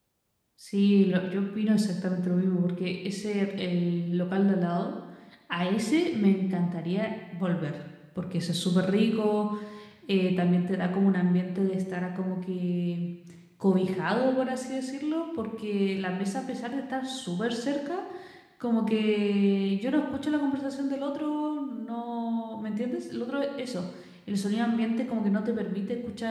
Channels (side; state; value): both; identical; correlation 1.00